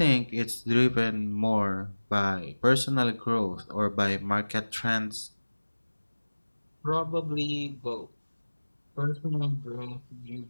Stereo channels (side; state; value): both; inverted; correlation -1.00